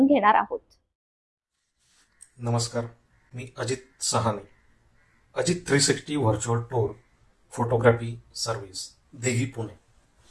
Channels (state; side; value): identical; both; correlation 1.00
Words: घेणार आहोत। नमस्कार, मी Ajit Sahane, Ajit 360 virtual tour photography service देही पुणे